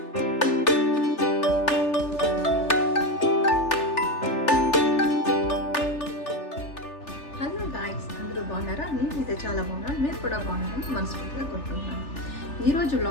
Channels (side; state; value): right; late; 3.4 ms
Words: హలో గాయ్స్, అందరూ బాగున్నారా? నేనైతే చాలా బాగున్నాను. మీరు కూడా బాగున్నారని మనస్ఫూర్తిగా కోరుకుంటున్నాను. ఈరోజు